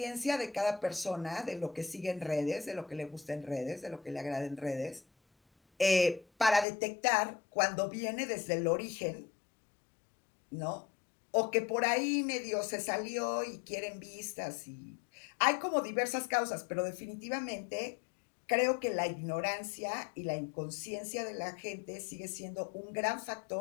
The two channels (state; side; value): drops out; right; at 6.7 s